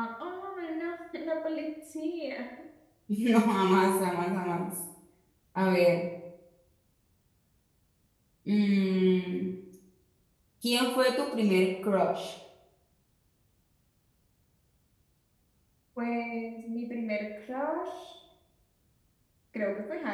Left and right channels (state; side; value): identical; both; correlation 1.00